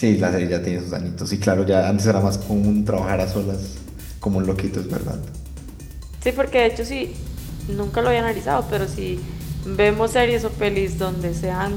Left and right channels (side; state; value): both; identical; correlation 1.00